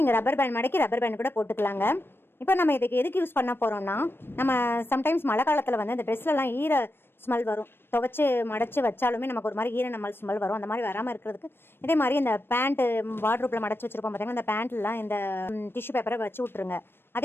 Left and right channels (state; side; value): late; right; 0.10 ms